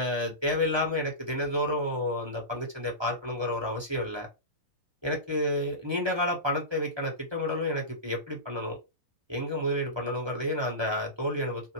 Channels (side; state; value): left; late; 1.3 ms